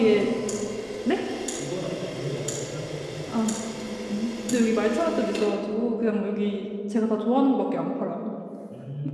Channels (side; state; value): both; identical; correlation 1.00